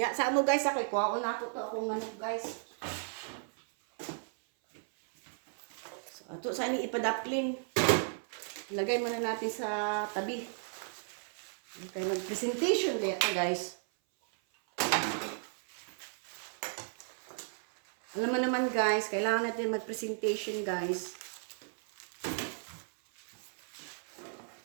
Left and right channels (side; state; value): left; silent; 55 dB below the other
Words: sa mo guys kay kuwaon na ako to akong guys. Ato sa ini ipadapling. Ilagay muna natin sa tabi. Okay, mag-presentation kaya guys. Alam mo naman guys, kailangan natin mag-presentation guys.